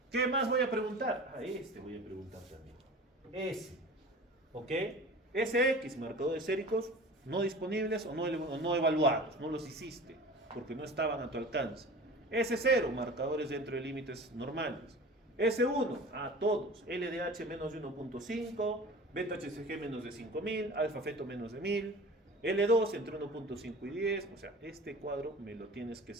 ¿Qué más voy a preguntar? Este voy a preguntar también. S. ¿Ok? SX, marcadores séricos no disponibles o no evaluados. No los hiciste porque no estaban a tu alcance. S0, marcadores dentro de límites normales. S1, todos. LDH menos de 1.5, beta HCG menos de 5000, alfa feto menos de 1000. L2 entre 1.5 y 10. O sea, este cuadro me lo tienes que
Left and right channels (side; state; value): both; normal; correlation 0.38